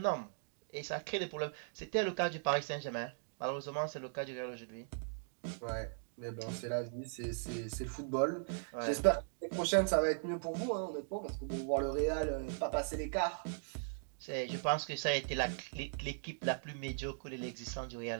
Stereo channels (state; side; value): silent; left; digital silence